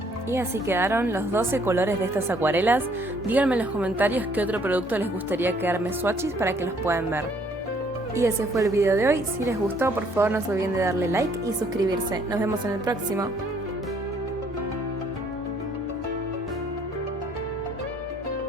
Y así quedaron los 12 colores de estas acuarelas. Díganme en los comentarios qué otro producto les gustaría que arme swatches para que los puedan ver. Y ese fue el video de hoy. Si les gustó, por favor no se olviden de darle like y suscribirse. Nos vemos en el próximo.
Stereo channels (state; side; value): normal; both; correlation 0.63